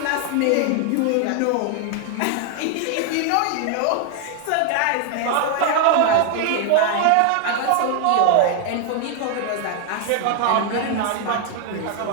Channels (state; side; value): different; both; correlation 0.00